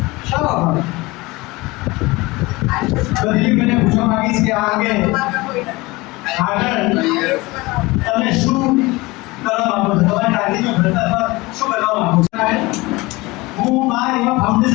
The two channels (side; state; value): right; quieter; 22.2 dB